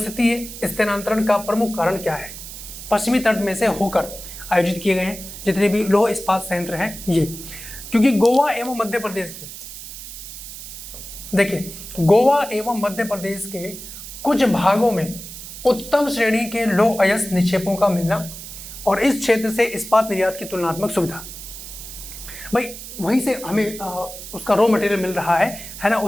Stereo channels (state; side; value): noise; right; hiss, 12 dB below the sound